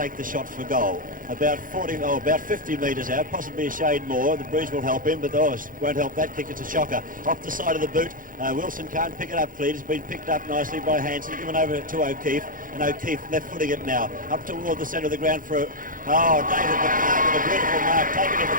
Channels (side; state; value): left; late; 0.40 ms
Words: the shot for goal. About 50 metres out, possibly a shade more. The breeze will help him, but won't help that kick. It's a shocker. Off the side of the boot, Wilson can't pick it up clean. It's been picked up nicely by Hanson, given over to O'Keefe, and O'Keefe left-footing it now. Up toward the centre of the ground for, David McMahon with a beautiful mark, taken at the